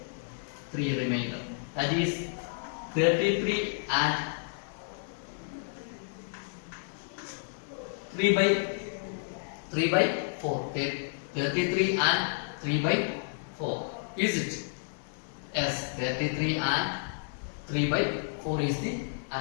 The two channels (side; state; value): right; silent; digital silence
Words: 3 remainder. That is 33 and 3 by 4. 33 and 3 by 4. Is it? Yes, 33 and 3 by 4 is the